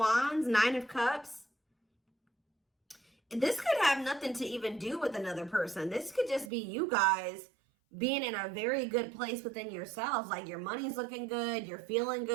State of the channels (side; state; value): left; drops out; at 6.5 s